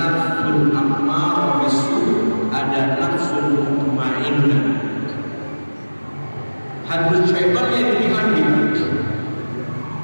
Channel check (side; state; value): both; inverted; correlation -1.00